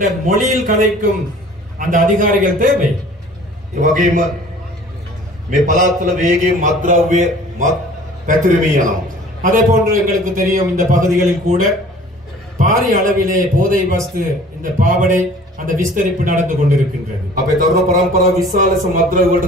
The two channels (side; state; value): both; normal; correlation 0.49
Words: மொழியில் கதைக்கும் அந்த அதிகாரிகள் தேவை. ඒ වගේම මේ පළාත්වල වේගයෙන් මත්ද්‍රව්‍ය පැතිරෙමින් යනවා. அதே போன்று எங்களுக்கு தெரியும், இந்த பகுதிகளில் கூட பாரிய அளவிலே போதை வஸ்து, இந்த பாவடை, அந்த விஸ்தரிப்பு நடந்து கொண்டிருக்கின்றது. අපේ තරුණ පරම්පරාව විශාල මත්ද්‍රව්‍ය වලට